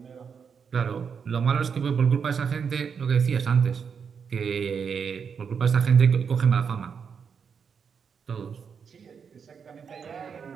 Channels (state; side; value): quieter; left; 6.5 dB